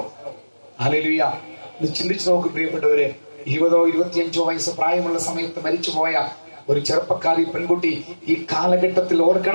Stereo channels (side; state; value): both; inverted; correlation -1.00